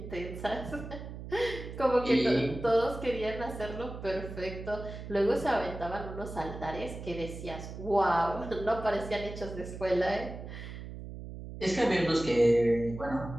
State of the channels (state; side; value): noise; right; hum, 10 dB below the sound